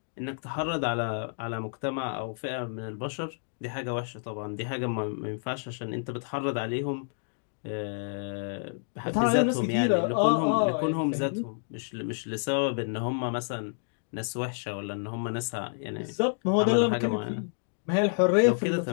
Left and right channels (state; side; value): silent; right; digital silence